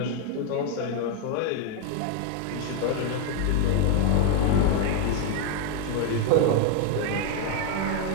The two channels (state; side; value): different; both; correlation 0.01